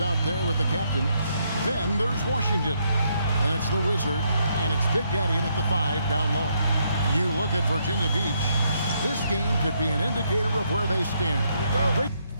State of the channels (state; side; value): inverted; both; correlation -0.75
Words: out there with the captain. Then there's Washington. And it's the Wizard. And it's Big Daddy in at the 5 down low. You look at Virginia Beach. This game could be an indicator of where they stand. Great.